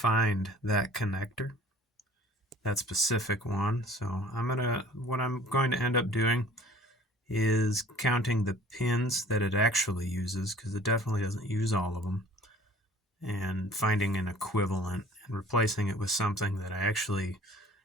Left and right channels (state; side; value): normal; both; correlation 0.49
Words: that connector, that specific one. So what I'm going to end up doing is counting the pins that it actually uses, because it definitely doesn't use all of them, and finding an equivalent and replacing it with something that I actually